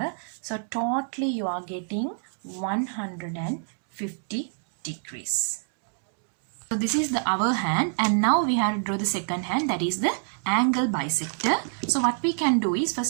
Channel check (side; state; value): left; silent; digital silence